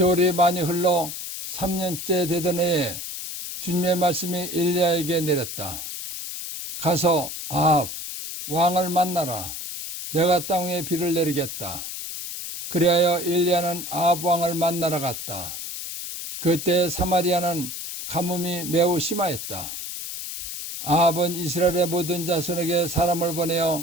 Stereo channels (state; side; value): noise; left; hiss, 7 dB below the sound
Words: 많이 흘러 3년째 되던 해에 주님의 말씀이 엘리야에게 내렸다. 가서 아합 왕을 만나라. 내가 땅 위에 비를 내리겠다. 그리하여 엘리야는 아합 왕을 만나러 갔다. 그때 사마리아는 가뭄이 매우 심하였다. 아합은 이스라엘의 모든 자손에게 사람을